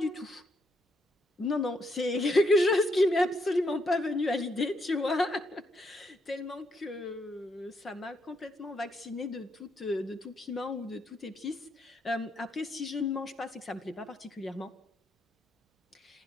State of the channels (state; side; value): normal; both; correlation 0.76